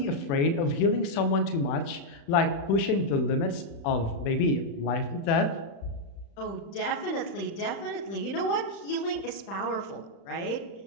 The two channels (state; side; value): late; right; 35 ms